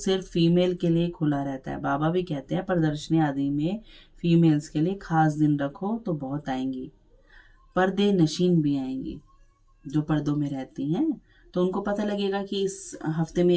फीमेल के लिए खुला रहता है। बाबा भी कहते हैं प्रदर्शनी आदि में फीमेल्स के लिए खास दिन रखो तो बहुत आएंगी। पर्दे नशीन भी आएंगी जो पर्दों में रहती हैं, तो उनको पता लगेगा कि इस हफ्ते में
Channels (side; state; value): both; identical; correlation 1.00